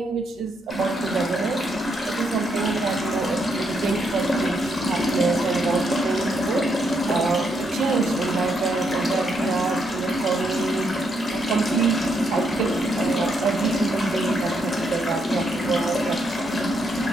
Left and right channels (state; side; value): normal; both; correlation 0.77